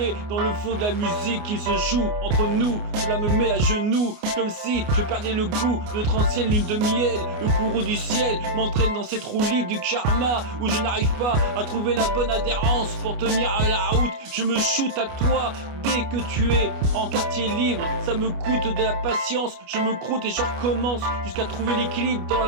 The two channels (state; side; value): late; left; 29 ms